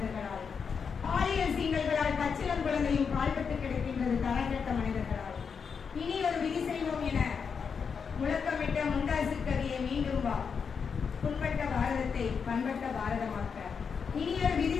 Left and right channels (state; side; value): quieter; right; 6.1 dB